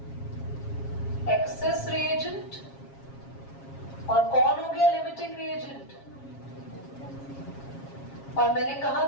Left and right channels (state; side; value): late; right; 7.4 ms